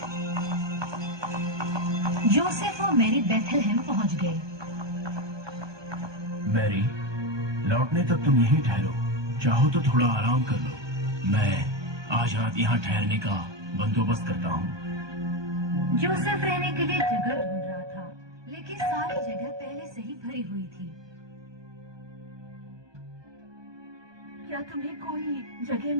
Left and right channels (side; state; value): left; late; 1.2 ms